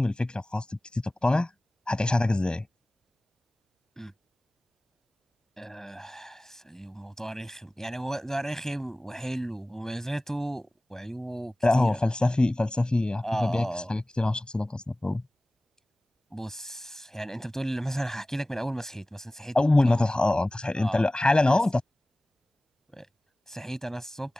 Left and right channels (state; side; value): normal; both; correlation 0.98